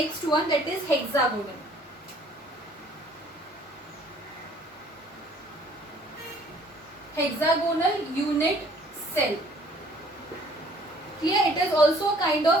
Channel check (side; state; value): both; normal; correlation 0.57